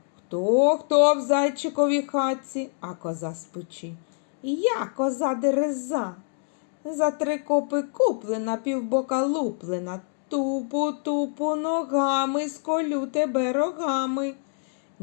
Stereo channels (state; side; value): silent; right; digital silence